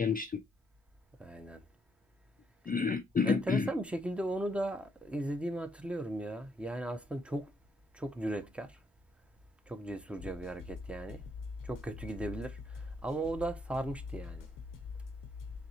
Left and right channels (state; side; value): normal; both; correlation 0.74